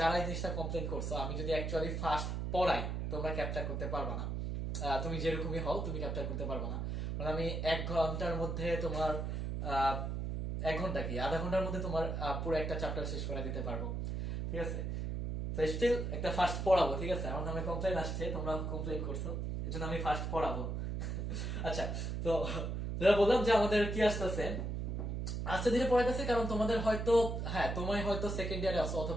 এই জিনিসটা কমপ্লেন করছো, আমি যদি অ্যাকচুয়ালি ফাস্ট পড়াই তোমরা ক্যাপচার করতে পারবে না। তুমি যেরকমই হও তুমি ক্যাপচার করতে পারবে না, কারণ আমি 1 ঘন্টার মধ্যে তোমার 1 ঘন্টা কি আধা ঘন্টার মধ্যে তোমার পুরো একটা চ্যাপ্টার শেষ করে দিতে পারবো। ঠিক আছে, তো স্টিল একটা ফার্স্ট পড়াবো। ঠিক আছে, আমার নামে কমপ্লেন আসছে, তোমরা কমপ্লেন করছো, এজন্য আমি ফার্স্ট পড়াবো। আচ্ছা, তো যেটা বললাম যে আমাদের কি আসতেছে, আস্তে ধীরে পড়াইতেছে, কারণ তোমাদের হয়তো তুমি হয়তো সেকেন্ড ইয়ারে আছো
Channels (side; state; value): right; noise; hum, 2 dB below the sound